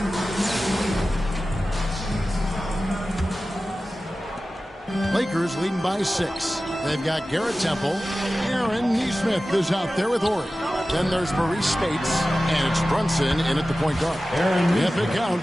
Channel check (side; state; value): both; normal; correlation 0.95